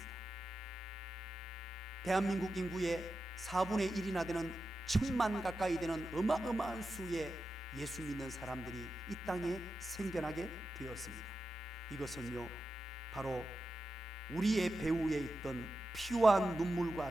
대한민국 인구의 4분의 1이나 되는 1,000만 가까이 되는 어마어마한 수의 예수 믿는 사람들이 이 땅에 생겨나게 되었습니다. 이것은요, 바로 우리의 배후에 있던 피와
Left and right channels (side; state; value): both; normal; correlation 0.91